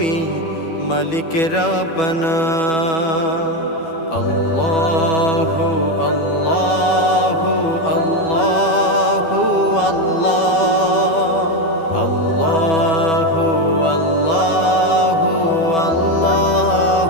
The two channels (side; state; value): right; late; 12 ms